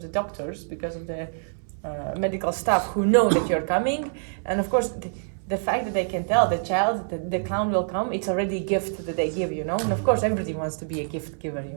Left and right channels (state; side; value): silent; left; 61 dB below the other